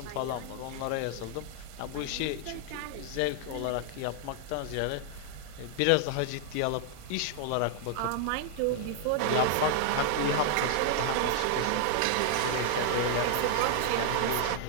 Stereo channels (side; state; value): both; different; correlation 0.00